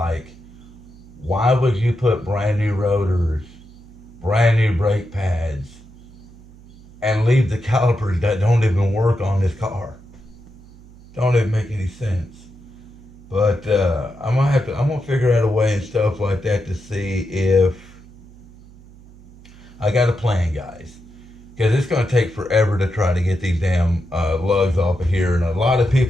why would you put brand new rotors, brand new brake pads, and leave the calipers that don't even work on this car? Don't even make any sense. But I'm gonna figure out a way and stuff like that to see if I got a plan, guys. Because it's gonna take forever to try to get these damn lugs off of here, and a lot of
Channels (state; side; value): noise; right; hum, 22 dB below the sound